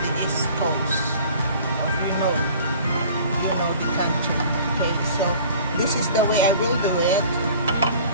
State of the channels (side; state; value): both; inverted; correlation -0.47